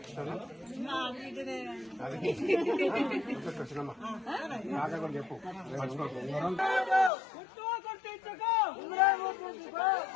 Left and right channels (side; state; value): right; drops out; at 7.1 s